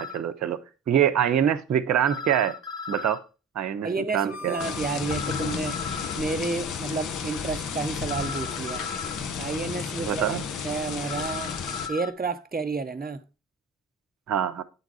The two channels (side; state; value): left; quieter; 4.1 dB